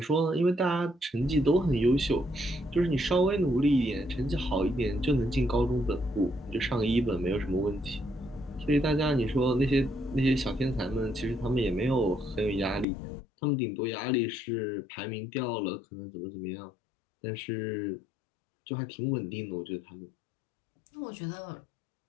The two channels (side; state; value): right; drops out; at 12.9 s